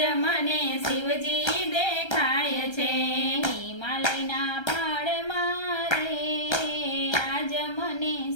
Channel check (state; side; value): late; right; 1.3 ms